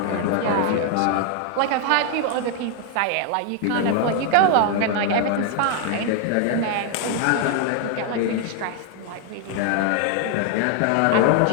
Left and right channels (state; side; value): different; both; correlation 0.00